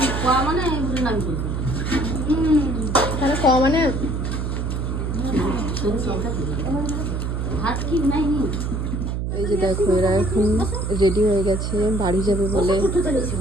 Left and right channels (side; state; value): right; noise; hum, 2 dB below the sound